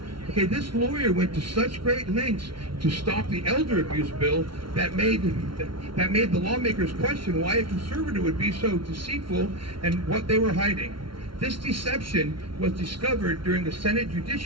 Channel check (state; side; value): late; left; 0.74 ms